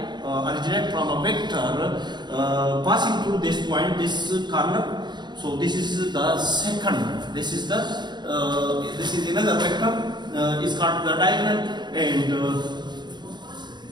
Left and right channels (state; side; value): late; left; 0.21 ms